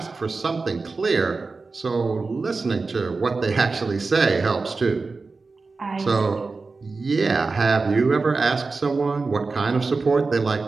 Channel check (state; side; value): quieter; left; 4.0 dB